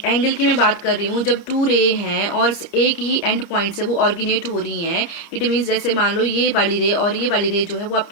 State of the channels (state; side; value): late; right; 29 ms